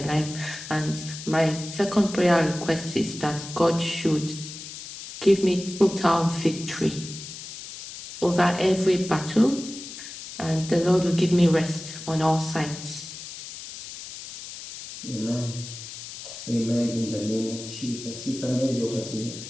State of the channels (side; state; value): left; noise; hiss, 12 dB below the sound